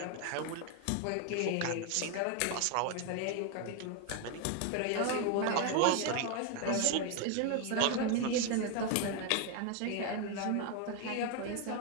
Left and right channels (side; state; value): both; different; correlation 0.01